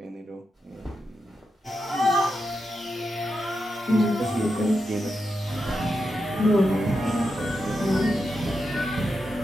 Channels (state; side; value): normal; both; correlation 0.87